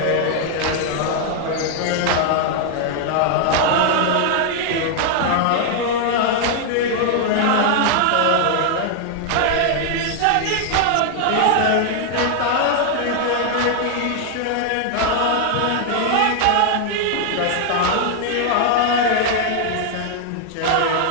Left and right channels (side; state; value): both; different; correlation 0.00